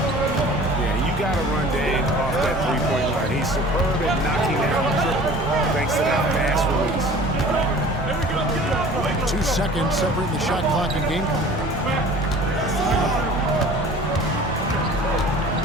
Yeah, you got to run Dave off that three-point line. He's superb at knocking down the triple thanks to that fast release. 2 seconds separating the shot clock and game clock.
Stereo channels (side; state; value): both; normal; correlation 0.45